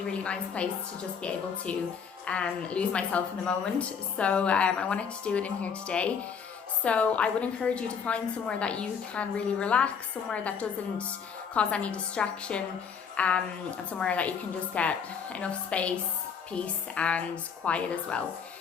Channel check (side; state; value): right; quieter; 6.6 dB